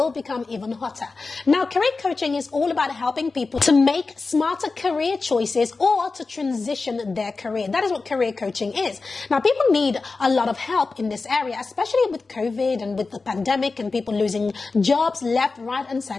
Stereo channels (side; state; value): right; quieter; 4.0 dB